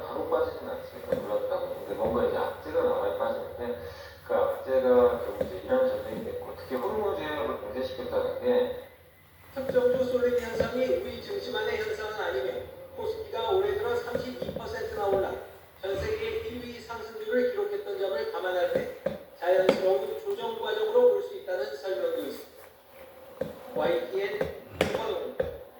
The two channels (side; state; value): both; identical; correlation 1.00